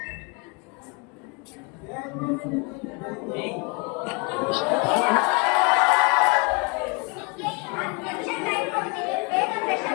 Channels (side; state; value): right; quieter; 32.3 dB